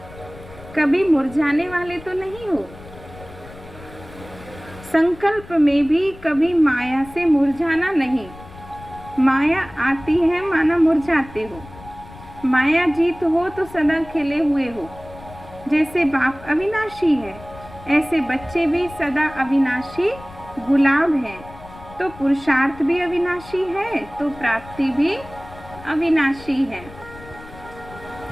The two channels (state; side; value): noise; left; rumble, 18 dB below the sound